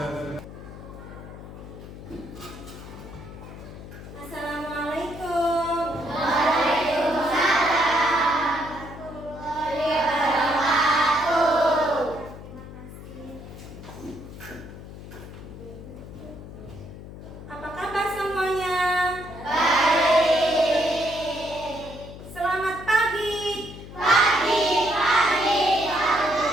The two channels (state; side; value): noise; left; hum, 14 dB below the sound